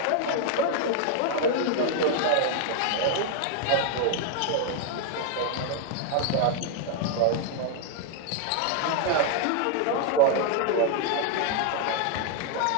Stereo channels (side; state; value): both; different; correlation 0.00